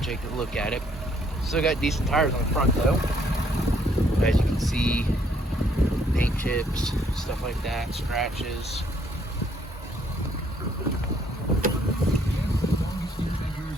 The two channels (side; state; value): both; normal; correlation 0.67